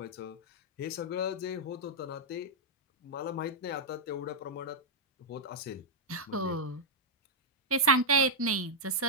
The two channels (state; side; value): normal; both; correlation -0.05